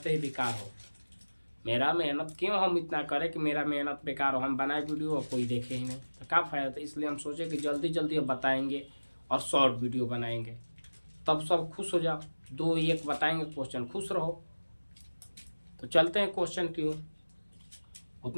ही बेकार हो। मेरा मेहनत क्यों हम इतना करें कि मेरा मेहनत बेकार हो। हम बनाए वीडियो और कोई देखे ही नहीं तो क्या फ़ायदा। तो इसलिए हम सोचे कि जल्दी जल्दी अब बताएंगे और शॉर्ट वीडियो बनाएंगे, तब सब खुश हो जाओ। 2 1 बताएंगे क्वेश्चन, खुश रहो। तो चलते हैं क्वेश्चन की ओर।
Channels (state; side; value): inverted; both; correlation -1.00